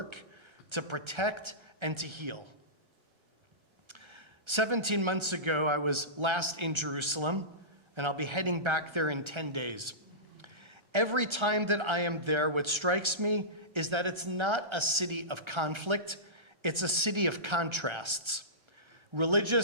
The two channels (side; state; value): left; late; 1.3 ms